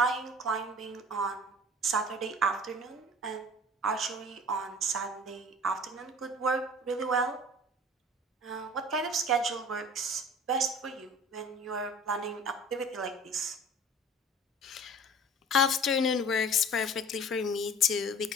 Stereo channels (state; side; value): normal; both; correlation 0.44